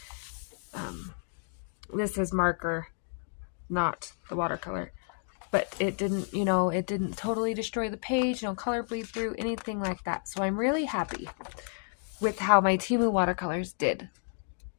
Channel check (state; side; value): silent; right; digital silence